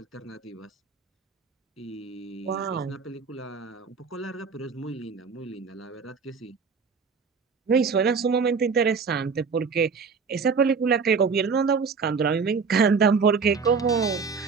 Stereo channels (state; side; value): quieter; left; 5.3 dB